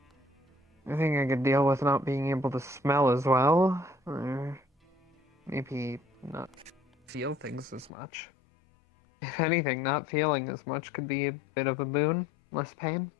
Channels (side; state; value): right; drops out; at 7.9 s